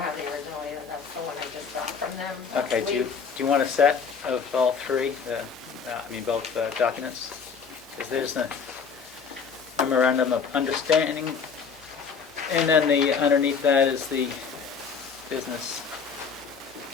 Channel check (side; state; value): right; quieter; 5.9 dB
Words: have the original either. That's the one I just got from them. Okay, do you want a set of all 3, both documents? Because there's a memorandum of understanding, and then underneath that is the business.